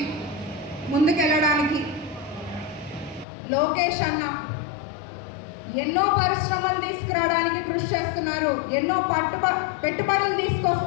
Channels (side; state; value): right; drops out; at 3.2 s